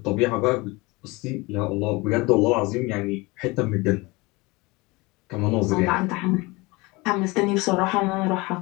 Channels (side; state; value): right; quieter; 24.1 dB